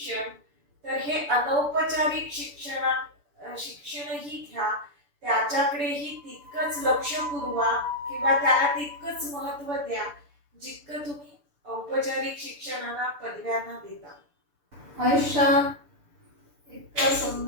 तर हे अनौपचारिक शिक्षणही घ्या, त्याच्याकडेही तितकंच लक्ष पुरवा, किंवा त्याला तितकंच महत्त्व द्या जितकं तुम्ही औपचारिक शिक्षणाला, पदव्यांना देता. आयुष्यात इतकं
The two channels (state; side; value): late; left; 6.9 ms